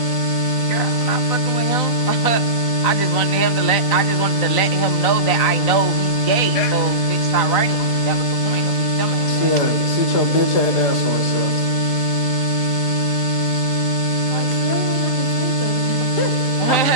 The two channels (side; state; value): right; late; 4.5 ms